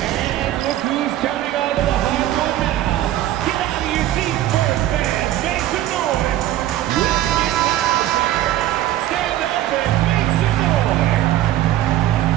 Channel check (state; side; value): quieter; left; 13.6 dB